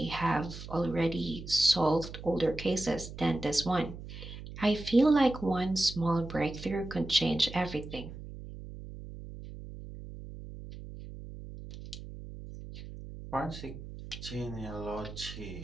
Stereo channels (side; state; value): right; noise; hum, 12 dB below the sound